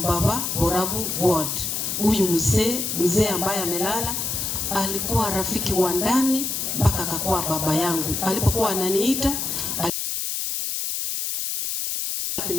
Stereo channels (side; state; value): left; noise; hiss, 2 dB below the sound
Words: Borabu God. Huyu mzee ambaye amelala alikuwa rafiki wa ndani mpaka akakuwa baba yangu. Alipokuwa ananiita